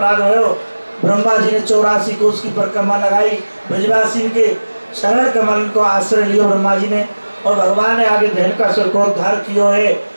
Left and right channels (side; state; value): both; inverted; correlation -1.00